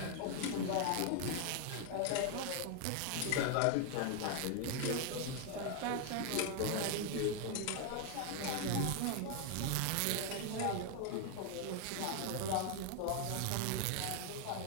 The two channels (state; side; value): different; both; correlation 0.01